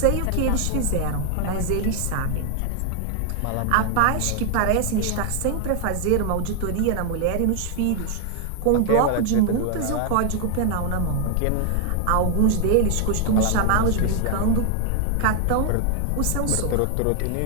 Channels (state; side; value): different; both; correlation 0.00